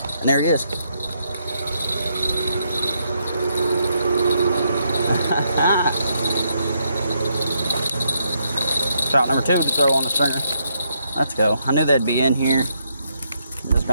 And there he is. Trout number 2 to throw on the stringer. Let's go. I knew they'd be in here. It's just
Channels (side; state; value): both; inverted; correlation -0.77